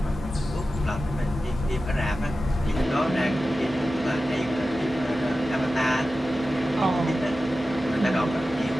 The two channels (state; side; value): normal; both; correlation 0.94